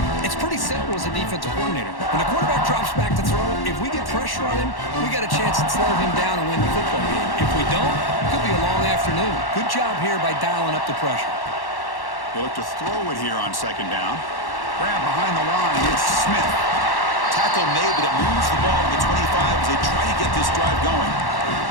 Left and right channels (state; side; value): late; right; 1.1 ms